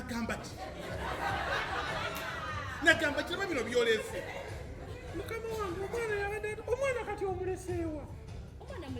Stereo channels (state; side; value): identical; both; correlation 1.00